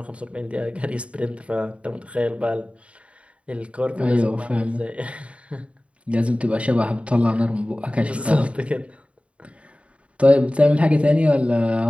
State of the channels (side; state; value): left; late; 0.062 ms